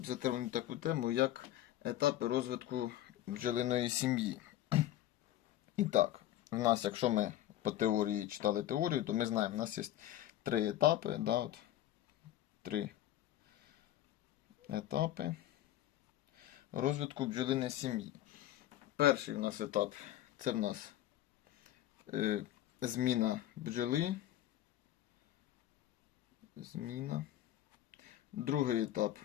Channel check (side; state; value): right; quieter; 13.3 dB